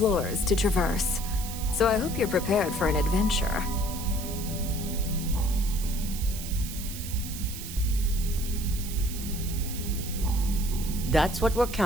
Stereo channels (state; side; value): noise; right; hiss, 10 dB below the sound